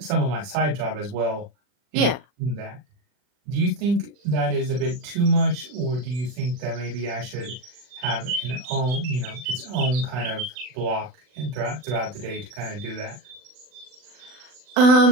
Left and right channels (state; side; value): late; left; 40 ms